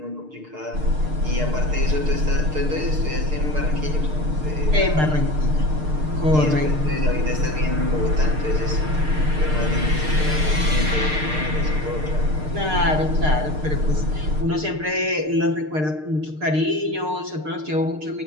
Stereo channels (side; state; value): left; late; 6.6 ms